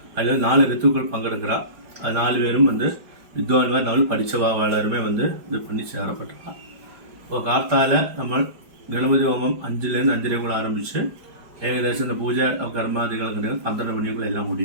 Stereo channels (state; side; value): late; left; 5.0 ms